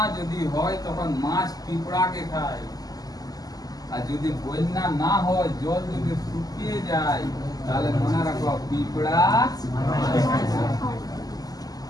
যদি হয় তখন মাছ পিঁপড়াকে খায়, আর যদি বন্যা না হয়, জল যদি শুকিয়ে যায়, তাহলে মনে রাখো পিঁপড়া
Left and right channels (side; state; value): right; late; 0.18 ms